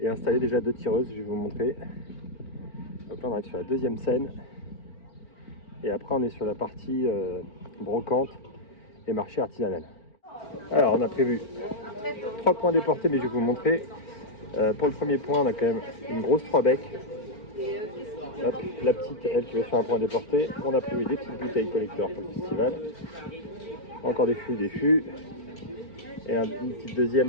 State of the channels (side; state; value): right; late; 4.4 ms